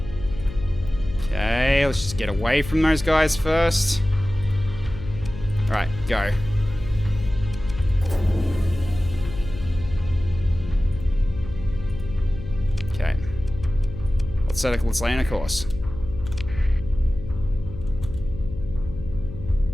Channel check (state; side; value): noise; left; hum, 11 dB below the sound